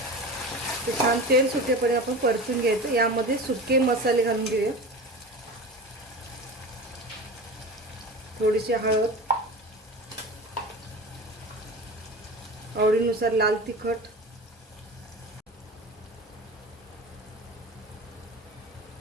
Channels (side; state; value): both; normal; correlation 0.32